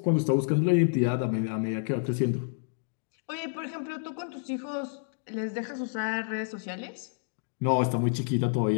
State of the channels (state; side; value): silent; right; digital silence